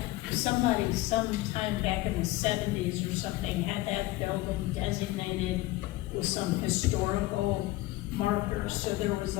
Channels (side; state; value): right; quieter; 18.3 dB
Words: somebody sometime back in the 70s or something had that building designated with some historical markers, so there was